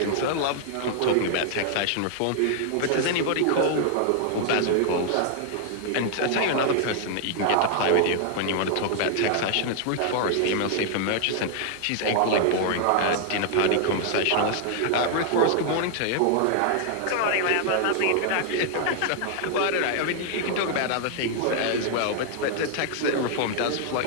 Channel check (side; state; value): both; different; correlation 0.00